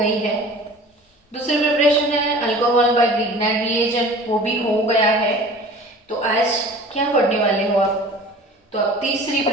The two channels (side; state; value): both; normal; correlation 0.43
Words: है। दूसरी प्रिपरेशन है अल्कोहल बाय ग्रिग्नार्ड रिएजेंट, वो भी हो गया है। तो आज क्या पढ़ने वाले हो आप? तो अब तीसरी